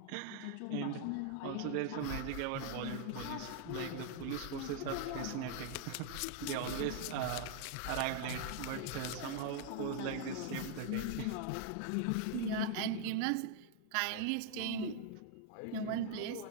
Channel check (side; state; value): both; different; correlation 0.00